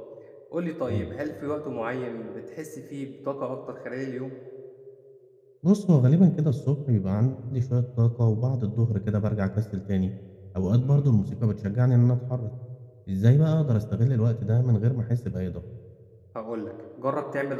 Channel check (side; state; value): both; identical; correlation 1.00